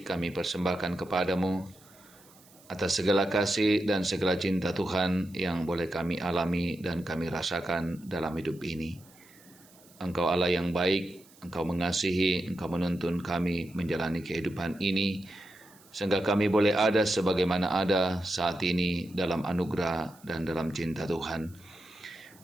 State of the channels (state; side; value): noise; right; hiss, 26 dB below the sound